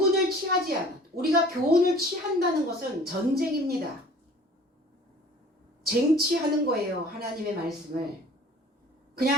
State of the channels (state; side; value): normal; both; correlation 0.48